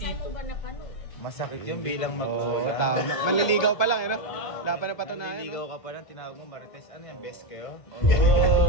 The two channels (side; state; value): right; late; 1.5 ms